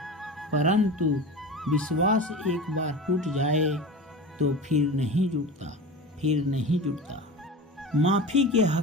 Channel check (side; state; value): both; normal; correlation 0.30